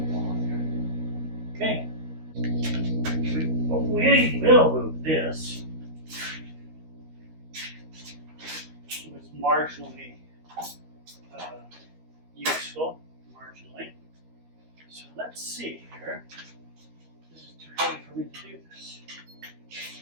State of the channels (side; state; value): left; late; 13 ms